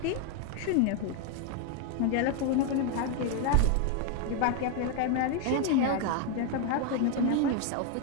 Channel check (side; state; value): both; different; correlation 0.01